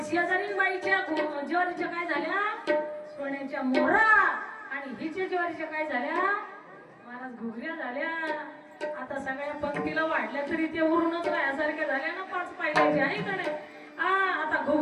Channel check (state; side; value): identical; both; correlation 1.00